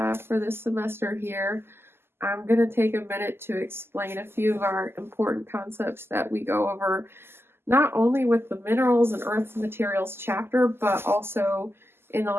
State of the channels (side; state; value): left; late; 0.12 ms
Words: for this semester here. I'm going to take a minute to explain a few of our important concepts that we go over, not only with the minerals and earth materials chapter, but also in the